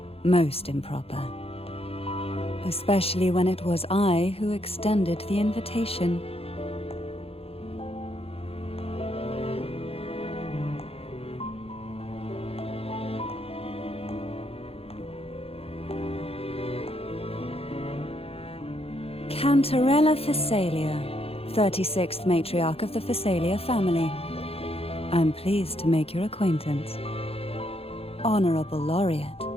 most improper. Especially when it was I who extended the invitation. Cantarella Phasalia, 36th matriarch of the Phasalia family. I'm pleased to make your acquaintance. Honorable Laureate,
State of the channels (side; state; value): right; late; 0.28 ms